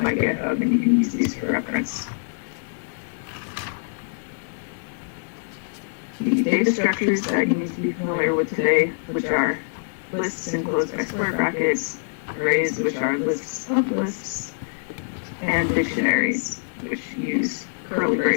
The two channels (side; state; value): right; silent; digital silence